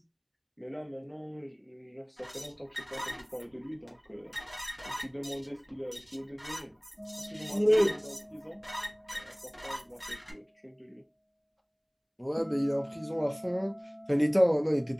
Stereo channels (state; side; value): identical; both; correlation 1.00